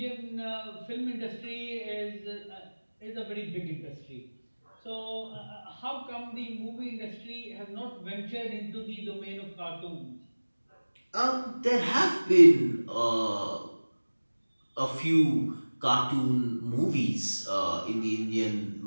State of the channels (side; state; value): both; inverted; correlation -1.00